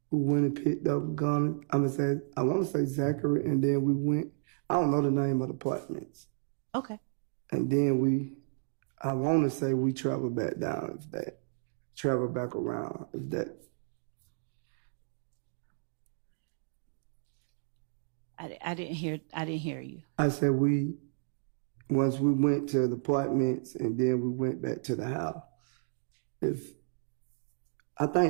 We went and picked up a gun. I want to say Zachary, and then we went, I don't know the name of the apartments. Okay. And then I want to say we traveled back down, traveled back around, if that. I didn't hear you. I said once we went to the apartments and then we went back to the house. I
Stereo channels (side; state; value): left; silent; digital silence